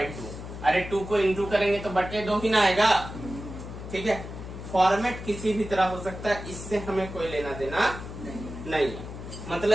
अरे 2 को इंटू करेंगे तो बटे 2 ही ना आएगा। ठीक है, फॉर्मेट किसी भी तरह हो सकता है, इससे हमें कोई लेना देना नहीं है।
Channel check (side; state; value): left; noise; hum, 10 dB below the sound